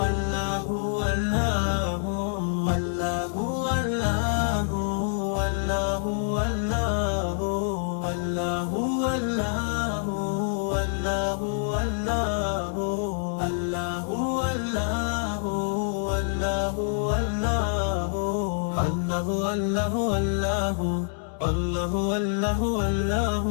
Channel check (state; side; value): silent; right; 61 dB below the other